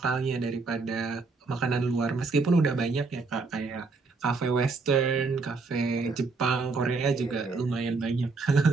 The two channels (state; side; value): quieter; left; 4.1 dB